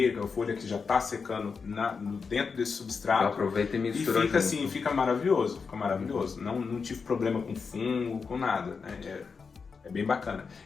a folha que já está secando dentro desse substrato. Aproveita e mistura. E fica assim, fica maravilhoso, fica maravilhoso. Não tive problema com fungo, com nada, né? É bem bacana.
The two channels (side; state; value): right; quieter; 5.3 dB